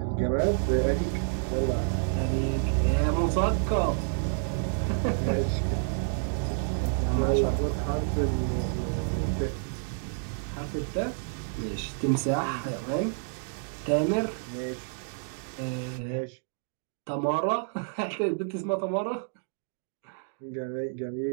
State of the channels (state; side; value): silent; left; digital silence